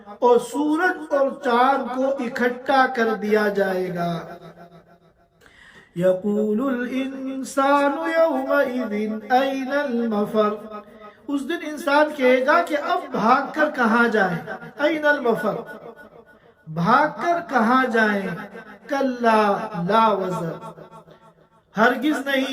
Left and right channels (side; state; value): both; identical; correlation 1.00